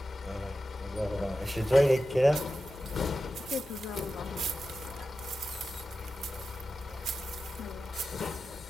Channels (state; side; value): normal; both; correlation 0.92